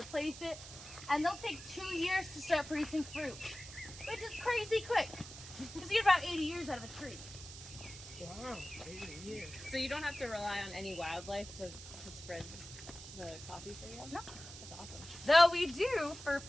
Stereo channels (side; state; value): right; noise; hiss, 13 dB below the sound